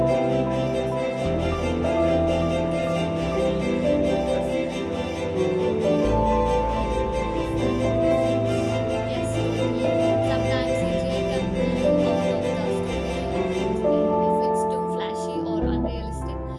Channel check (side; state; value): both; identical; correlation 1.00